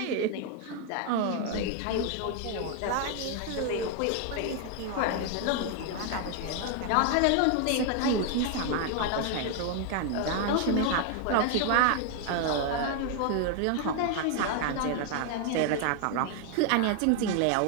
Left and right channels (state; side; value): different; both; correlation 0.01